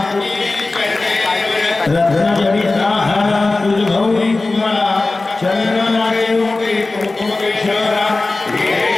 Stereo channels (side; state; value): right; quieter; 3.3 dB